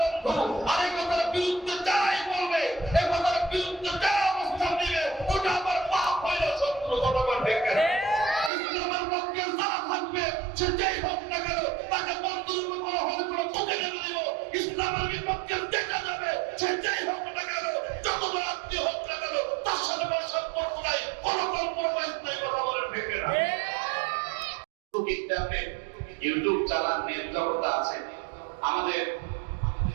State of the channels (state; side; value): drops out; left; at 8.5 s